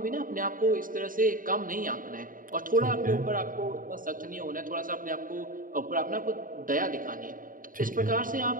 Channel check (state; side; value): late; left; 0.40 ms